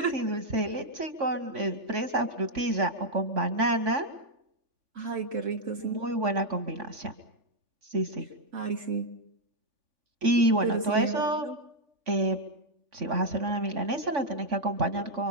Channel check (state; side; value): late; left; 3.5 ms